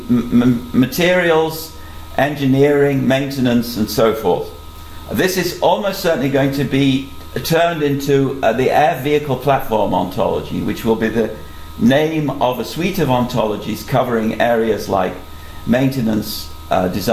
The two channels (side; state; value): both; identical; correlation 1.00